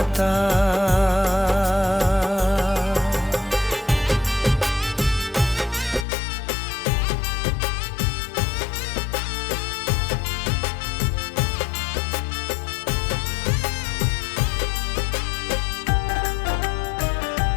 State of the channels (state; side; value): drops out; right; at 6.1 s